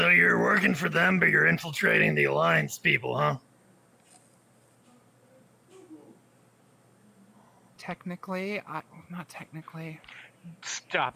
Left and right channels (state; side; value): identical; both; correlation 1.00